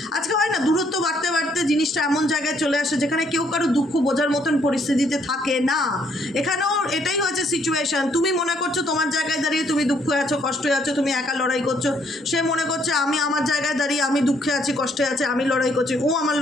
আজকে হয় না দূরত্ব বাড়তে বাড়তে জিনিসটা এমন জায়গায় চলে আসে যেখানে কেউ কারো দুঃখ বোঝার মতন পরিস্থিতিতে থাকে না। এখানেও এটাই হয়েছে সিচুয়েশান। তুমি মনে করছো তোমার জায়গায় দাঁড়িয়ে তুমি দুঃখে আছো, কষ্টে আছো, তুমি একা লড়াই করছো। সে মনে করছে আমি আমার জায়গায় দাঁড়িয়ে আমি দুঃখে আছি, কষ্টে আছি, আমি লড়াই করছি, ও আমার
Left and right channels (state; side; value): normal; both; correlation 0.69